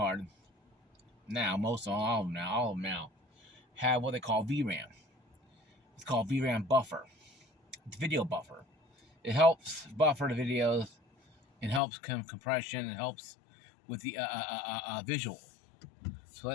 now, all of them now, have what they call VRAM. It's called VRAM buffer. It's video buffer. It helps buffer the videos. It helps compression. It helps with the visual. So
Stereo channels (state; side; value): drops out; right; at 11.8 s